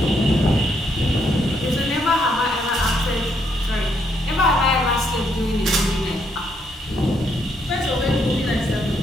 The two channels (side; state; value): both; normal; correlation 0.74